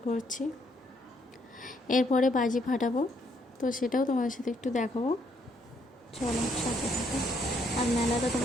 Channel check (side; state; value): both; normal; correlation 0.71